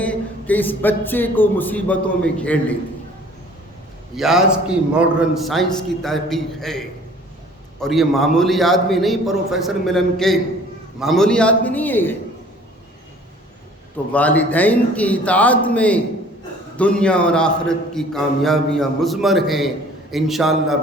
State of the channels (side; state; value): both; normal; correlation 0.51